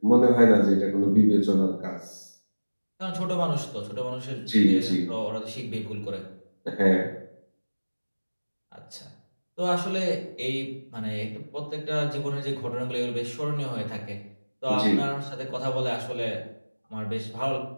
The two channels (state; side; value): inverted; both; correlation -1.00